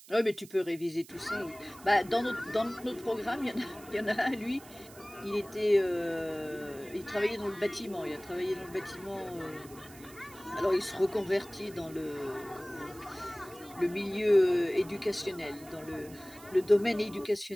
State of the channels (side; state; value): right; noise; hiss, 20 dB below the sound